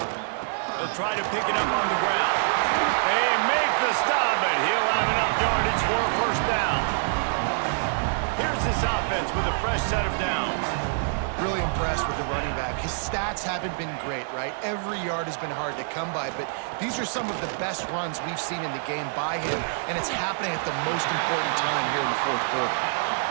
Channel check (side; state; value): left; silent; digital silence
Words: They'll try to pick it up on the ground. They make the stop, but he'll have enough yardage for a first down. Here's this offense with a fresh set of downs. Really impressed with the running back. His stats haven't been great, right? Every yard has been hard to come by, but these are some of the best runs we've seen in the game by him, and it's happening at the most important time here in the fourth quarter.